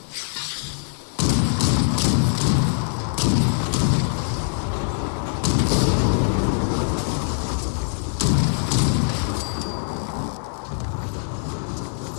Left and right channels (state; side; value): silent; right; digital silence